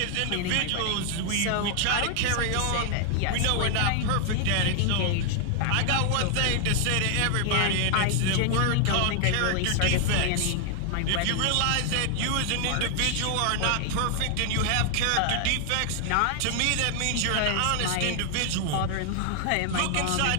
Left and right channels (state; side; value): different; both; correlation 0.00